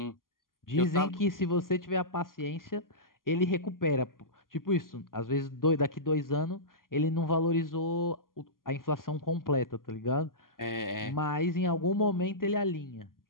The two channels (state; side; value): late; right; 0.91 ms